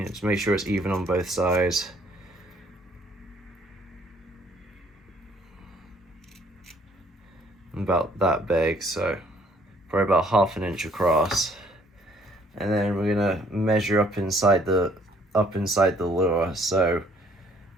make sure it's even on both sides. About that big, so probably about 1/2 inch across. And then we're gonna measure up inside the lure. So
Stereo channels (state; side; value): normal; both; correlation 0.62